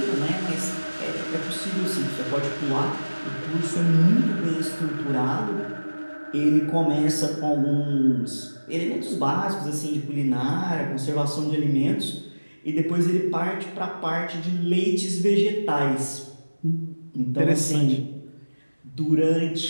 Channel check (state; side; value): inverted; both; correlation -1.00